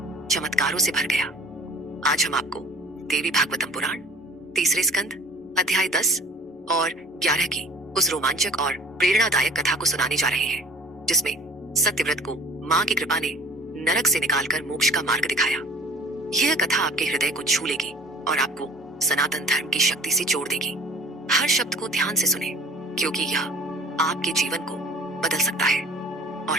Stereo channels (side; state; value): both; normal; correlation 0.46